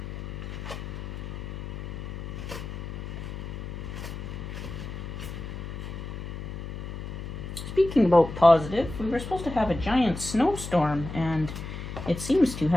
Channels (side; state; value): left; noise; hum, 8 dB below the sound